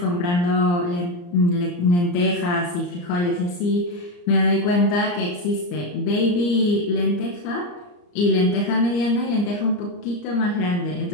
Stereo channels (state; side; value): late; right; 34 ms